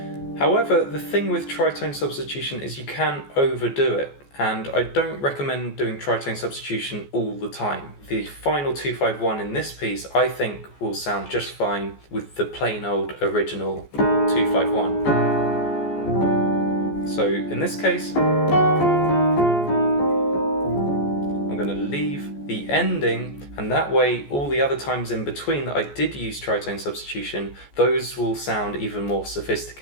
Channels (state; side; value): late; right; 14 ms